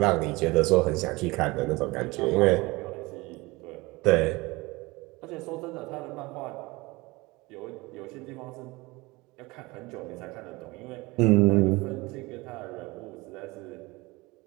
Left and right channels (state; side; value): quieter; left; 22.9 dB